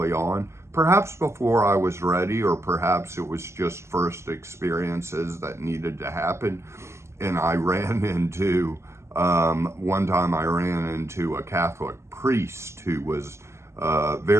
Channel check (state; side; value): late; left; 0.13 ms